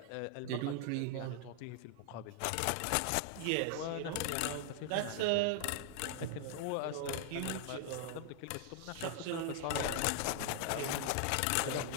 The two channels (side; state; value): both; different; correlation 0.00